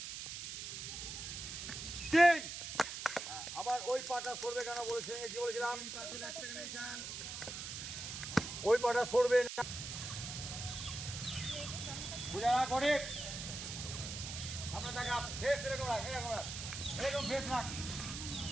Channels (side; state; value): right; noise; hiss, 7 dB below the sound